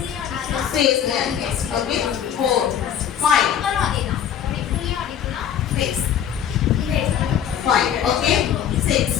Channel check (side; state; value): right; quieter; 9.2 dB